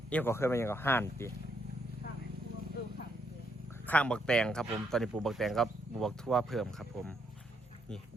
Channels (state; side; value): normal; both; correlation 0.75